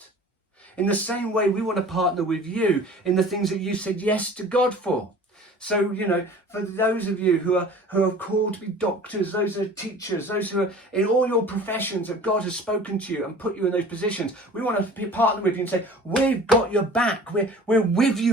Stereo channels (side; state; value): both; normal; correlation 0.44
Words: In the same way, we want to partner with you in the things that you said yes to God for. So, you know, for those of you who are called to be doctors, those who are teachers, those who are in all your professions that God has spoken to you and put you in those positions, we want to partner with you and say, we've got your back. We're with